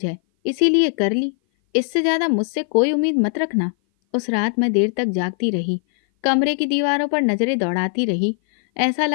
है, इसीलिए कर ली। इससे ज्यादा मुझसे कोई उम्मीद मत रखना। उस रात मैं देर तक जागती रही, कमरे की दीवारों पर नजरें दौड़ाती रही। ऐसा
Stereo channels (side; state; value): right; silent; 57 dB below the other